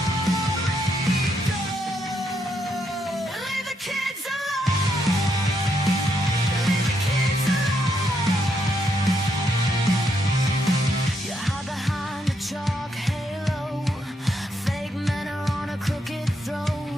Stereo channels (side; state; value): both; normal; correlation 0.77